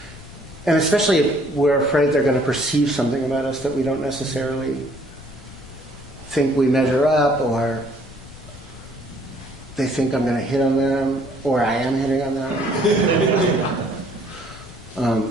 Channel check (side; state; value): left; noise; rumble, 18 dB below the sound